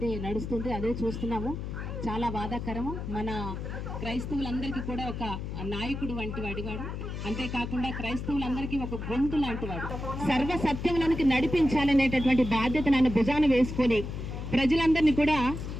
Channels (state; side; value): noise; left; hum, 6 dB below the sound